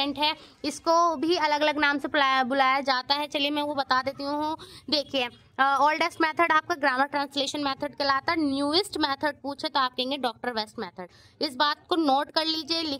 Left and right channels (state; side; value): identical; both; correlation 1.00